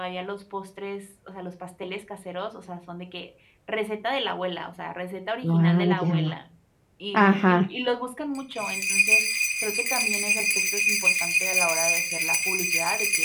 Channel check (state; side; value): identical; both; correlation 1.00